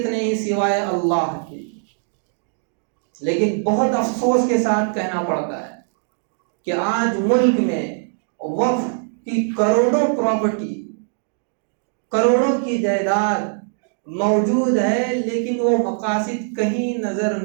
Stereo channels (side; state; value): left; silent; 65 dB below the other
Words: نہیں سوائے اللہ کی۔ لیکن بہت افسوس کے ساتھ کہنا پڑتا ہے کہ آج ملک میں وقف کی کروڑوں پراپرٹی، کروڑوں کی جائیداد موجود ہے، لیکن وہ مقاصد کہیں نظر